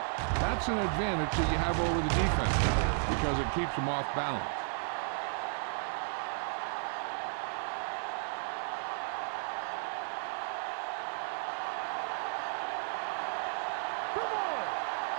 that's an advantage that you have over the defense because it keeps them off balance. All on us, y'all. Come on.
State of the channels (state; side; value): silent; left; digital silence